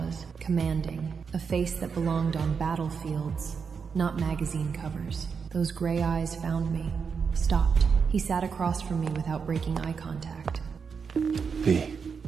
Commanding. A face that belonged on battlefields, not magazine covers. Those gray eyes found me. Stopped. He sat across from me without breaking eye contact. V.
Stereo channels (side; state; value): left; quieter; 5.9 dB